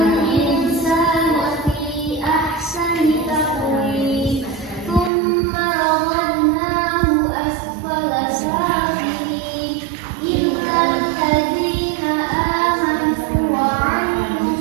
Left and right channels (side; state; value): left; drops out; at 5.1 s